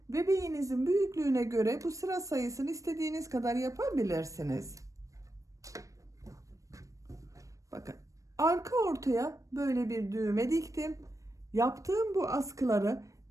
bebeğinizin büyüklüğüne göre bu sıra sayısını istediğiniz kadar yapabilirsiniz. Bakın arka ortaya böyle bir düğme diktim. Yaptığım bu askıları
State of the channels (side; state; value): left; late; 0.16 ms